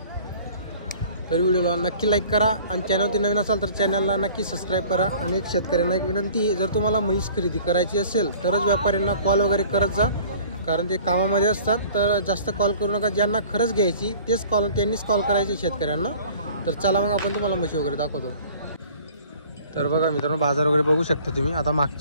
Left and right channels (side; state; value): both; inverted; correlation -0.49